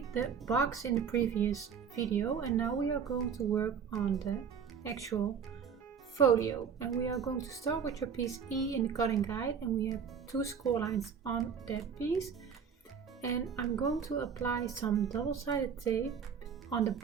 the box in the previous video, and now we are going to work on the actual folio. And we are going to start with your piece E in the cutting guide, and we have 2 score lines on that piece. And I'm going to apply some double-sided tape on the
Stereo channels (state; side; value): quieter; left; 6.9 dB